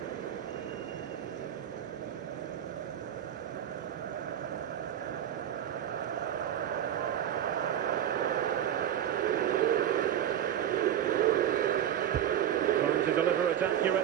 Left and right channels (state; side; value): quieter; left; 10.4 dB